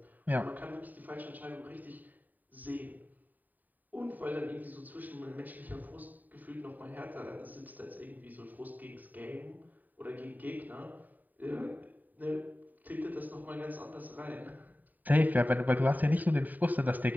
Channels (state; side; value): late; left; 0.085 ms